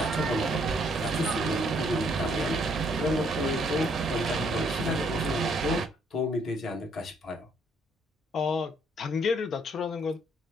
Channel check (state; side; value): normal; both; correlation 0.68